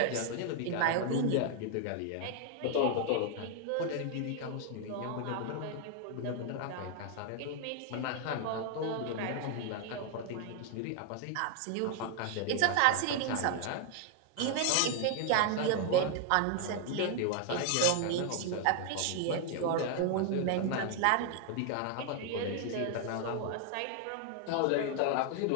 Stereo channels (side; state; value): both; different; correlation 0.00